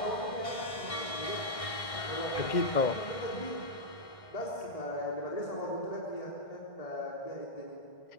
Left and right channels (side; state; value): right; late; 1.6 ms